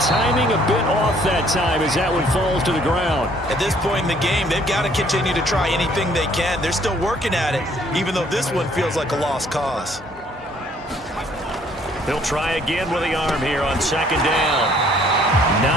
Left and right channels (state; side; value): normal; both; correlation 0.62